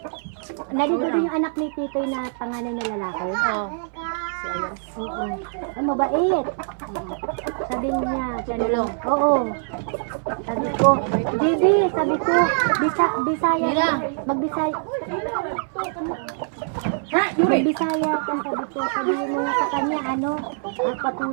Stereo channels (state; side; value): silent; left; 60 dB below the other